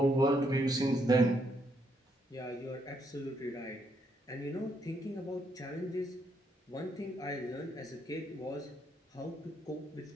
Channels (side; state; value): both; normal; correlation 0.75